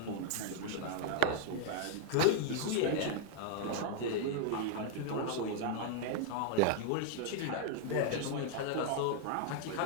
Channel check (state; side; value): different; both; correlation 0.00